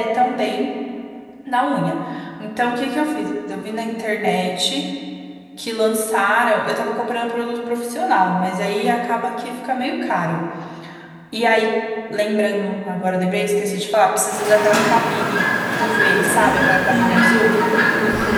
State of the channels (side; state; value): both; identical; correlation 1.00